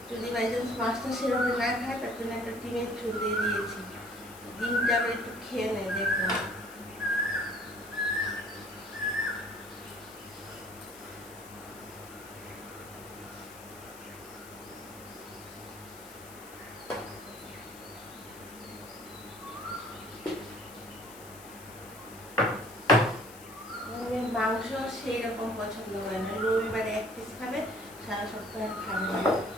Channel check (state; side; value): noise; left; hiss, 18 dB below the sound